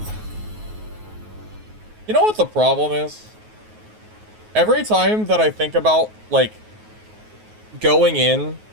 You know what the problem is? Every time that I think about, like, going in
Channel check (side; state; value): left; late; 9.4 ms